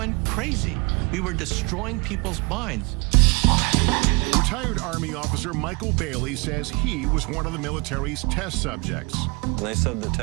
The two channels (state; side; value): quieter; left; 30.0 dB